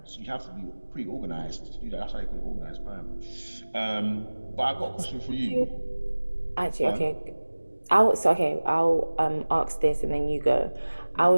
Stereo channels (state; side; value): inverted; both; correlation -1.00